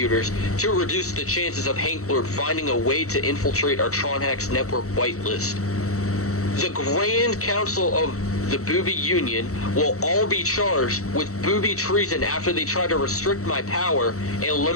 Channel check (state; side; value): late; right; 0.65 ms